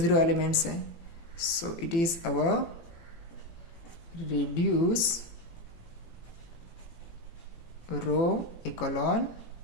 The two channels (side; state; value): right; late; 18 ms